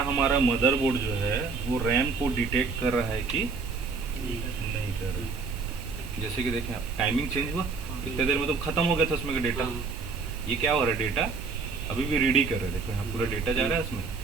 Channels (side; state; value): left; quieter; 4.5 dB